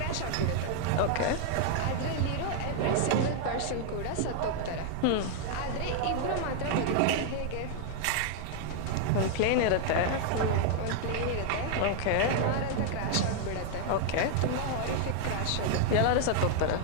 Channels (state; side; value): different; both; correlation 0.00